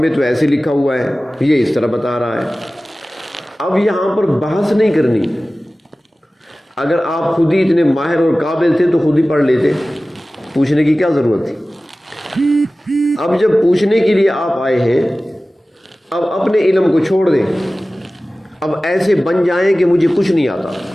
تو ایسے لکھا ہوا ہے، یہ اس طرح بتا رہا ہے. اب یہاں پر بحث نہیں کرنی. اگر آپ خود ہی اتنے ماہر اور قابل تھے تو خود ہی پڑھ لیتے، پوچھنے کی کیا ضرورت تھی. اب جب پوچھنے کے لیے آپ آئے ہیں، اب اپنے علم کو چھوڑ دیں. اب ایسے بن جائیں کہ مجھے کچھ نہیں آتا،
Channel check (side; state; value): both; normal; correlation 0.97